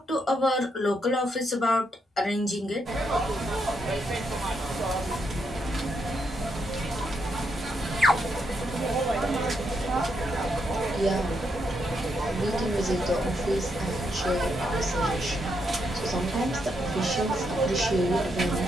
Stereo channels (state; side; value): normal; both; correlation 0.79